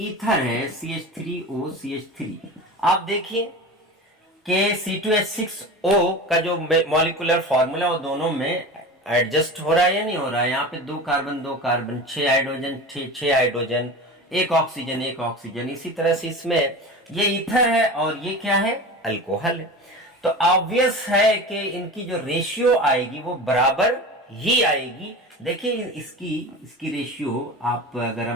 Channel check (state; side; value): normal; both; correlation 0.31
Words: है, CH3OCH3। आप देखिए कि C2H6O का जो मॉलिक्यूलर फॉर्मूला वो दोनों में एडजस्ट हो रहा है या नहीं हो रहा है। यहाँ पे 2 कार्बन 6 हाइड्रोजन, एक ऑक्सीजन। इसी तरह से इसमें ये ईथर है और ये क्या है, अल्कोहल है। तो ऑब्वियस है कि इनकी जो रेशियो आएगी वो बराबर ही आएगी। देखिए इसकी रेशियो आप अगर